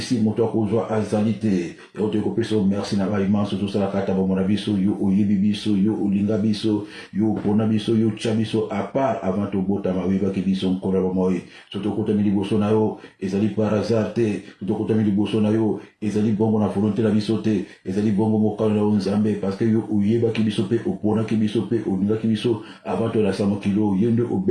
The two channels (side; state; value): both; identical; correlation 1.00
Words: moto akozwa azali te. Et on te kopesa merci na ba immense tout ça la kata bomona biso yo oyebi biso yo olinga biso yo pona biso yo tcha biso à part avant to bota ma wiba ki biso nkora ba moyi. Soto kota mi liboso na yo ezali par hasard te. Soto kota mi liboso na yo ezali bongo na volonté na biso te. Ezali bongo mokalo na nzambe parce que yo oyeba ki biso pe opona ki biso pe olinga ki biso avant to la samo kilo yende